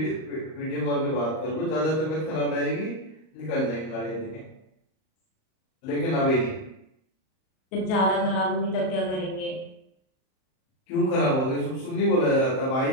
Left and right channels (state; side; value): late; right; 38 ms